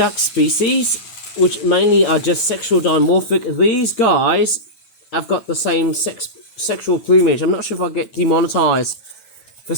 species, which mainly are just sexual dimorphic, these guys have got the same sexual plumage. I'm not sure if I'll get demonetized for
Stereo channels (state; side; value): late; right; 9.1 ms